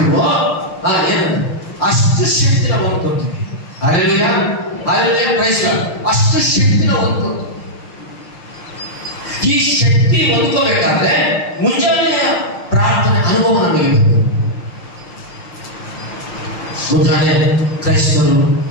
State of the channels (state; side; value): late; right; 5.8 ms